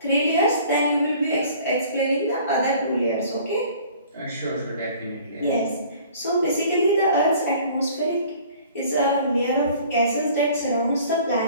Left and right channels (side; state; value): both; inverted; correlation -0.51